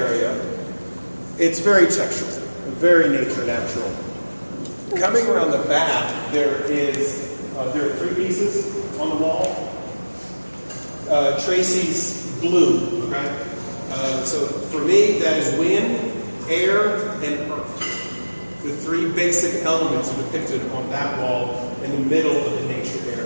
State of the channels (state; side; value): inverted; both; correlation -1.00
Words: it's very textural, very nature natural. Coming around the back, there are 3 pieces on the wall. Tracy's blue, okay? So for me, that is wind, air, and earth. The 3 basic elements are depicted on that wall in the middle of the nature